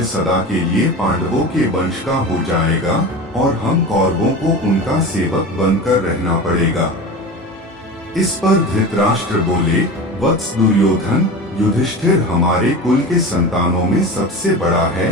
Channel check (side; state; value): both; normal; correlation 0.31